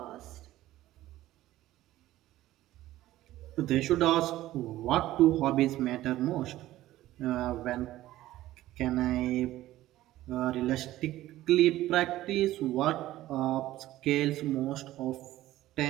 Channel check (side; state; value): left; quieter; 15.2 dB